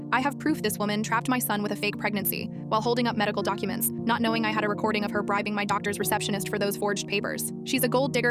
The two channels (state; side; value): identical; both; correlation 1.00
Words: "I have proof this woman trapped my son with a fake pregnancy," while holding up medical documents, not knowing I had a recording of her bribing my doctor's receptionist for those forged papers. "She's a gold digger